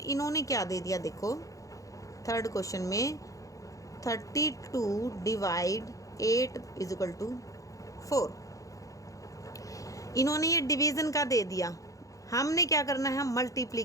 क्या दे दिया, देखो थर्ड क्वेश्चन में 32 / 8 = 4, इन्होंने ये डिवीज़न का दे दिया। हमने क्या करना है?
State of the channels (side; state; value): right; late; 0.16 ms